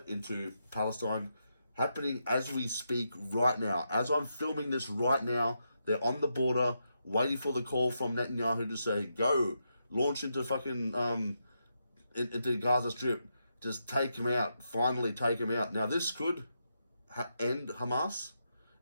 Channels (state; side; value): inverted; both; correlation -0.83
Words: into Palestine, happening as we speak right now. As I'm filming this right now, they're on the border, waiting for the call from Netanyahu to say, go, launch into fucking, into Gaza Strip. Just take him out. Finally take him out. Now, this could end Hamas.